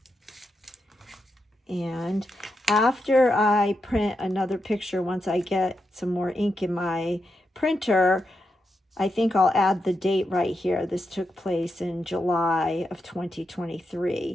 And after I print another picture, once I get some more ink in my printer, I think I'll add the date right here. This took place in July of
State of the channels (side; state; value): both; normal; correlation 0.86